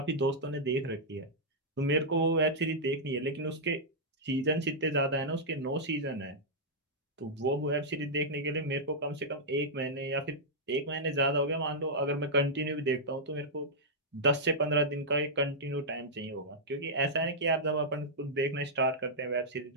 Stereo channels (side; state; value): both; normal; correlation -0.08